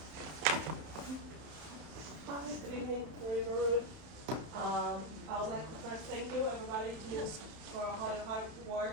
Hi, good evening, Marie Baroud. I would like to first thank you, everybody, for all your hard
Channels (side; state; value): left; late; 31 ms